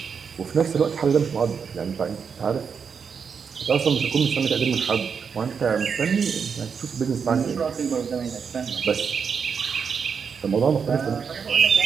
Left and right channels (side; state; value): left; quieter; 6.3 dB